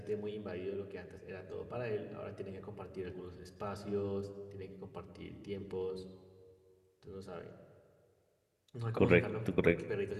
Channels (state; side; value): identical; both; correlation 1.00